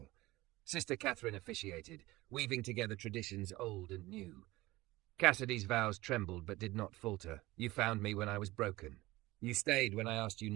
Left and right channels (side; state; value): left; quieter; 19.2 dB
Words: Sister Catherine officiated, weaving together traditions old and new. Cassidy's vows trembled but did not falter. You found me when I was broken. You stayed when I asked you